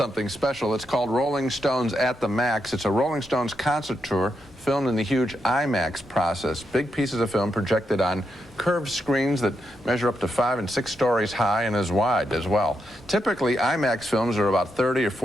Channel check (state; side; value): normal; both; correlation 0.83